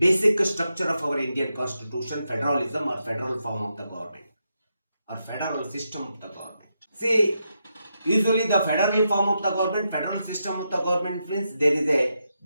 structure of our Indian constitution, federalism or federal form of the government or federal system of the government. See, usually the federal form of the government, federal system of the government means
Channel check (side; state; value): both; inverted; correlation -0.85